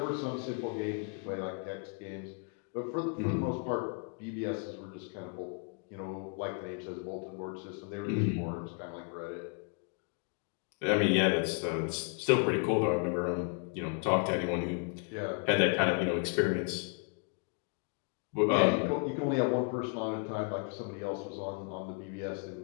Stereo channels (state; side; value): quieter; right; 38.6 dB